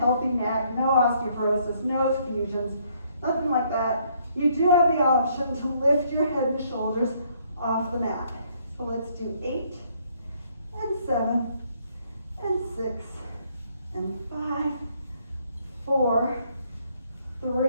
neck, no osteoporosis, no fusions, nothing like that, you do have the option to lift your head and shoulders off the mat. So let's do 8 and 7 and 6 and 5, 4,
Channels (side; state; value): both; inverted; correlation -0.67